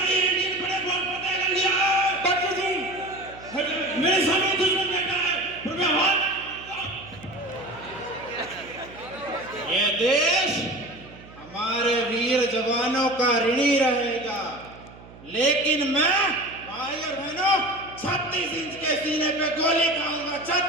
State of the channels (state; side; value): noise; right; hum, 20 dB below the sound